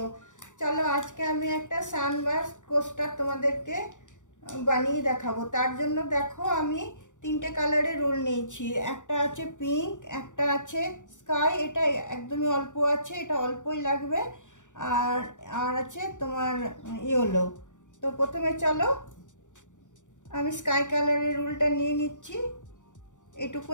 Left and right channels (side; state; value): right; late; 0.86 ms